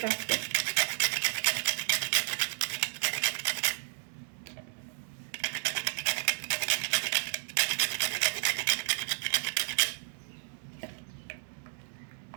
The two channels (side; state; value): left; silent; digital silence